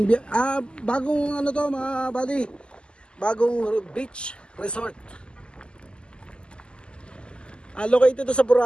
Bagong ano to, mga buddy. Bagong beach resort. Located to sa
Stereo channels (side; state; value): right; late; 0.050 ms